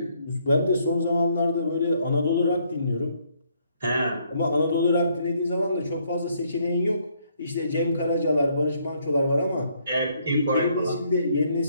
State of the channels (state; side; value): inverted; both; correlation -0.70